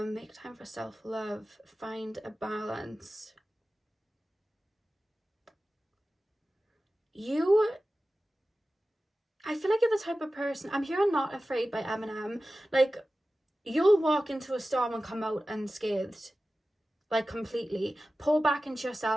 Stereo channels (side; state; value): both; normal; correlation 0.95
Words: time for self-love, find a balance. I feel like you're the type of person, I'm hearing Not Afraid by Eminem, like, you'll walk into a storm and come out unscathed, like, completely. Pour back into